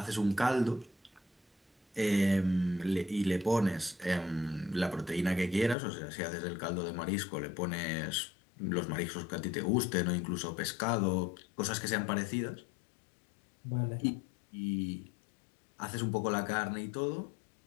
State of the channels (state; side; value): drops out; right; at 5.8 s